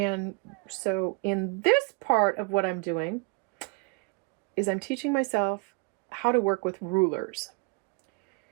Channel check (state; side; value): quieter; left; 29.0 dB